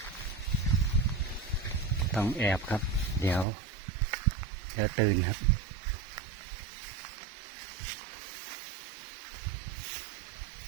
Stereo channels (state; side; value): drops out; left; at 3.5 s